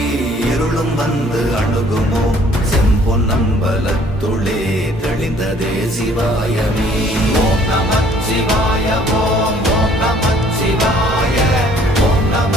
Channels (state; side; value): normal; both; correlation 0.58